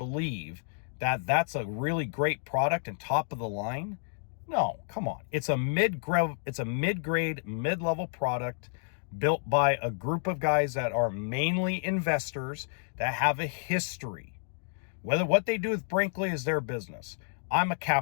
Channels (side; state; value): right; silent; digital silence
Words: that that's a really great product and top of the line? No, come on. It's a mid-grade, mid-level product built by a group of guys that are mainly investors that have a history. Whether what they do with Brinkley is their business. I'm a